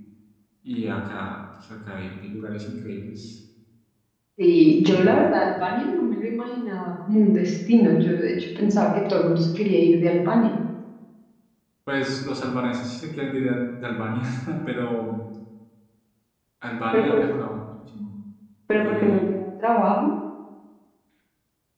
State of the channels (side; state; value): both; identical; correlation 1.00